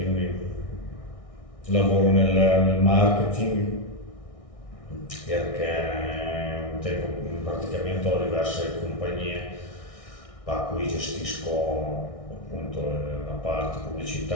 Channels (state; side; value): late; right; 1.6 ms